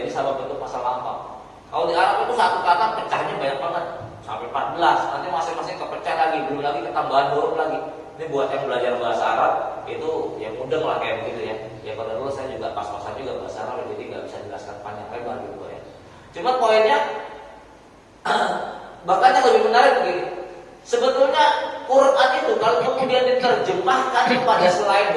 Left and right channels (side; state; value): both; identical; correlation 1.00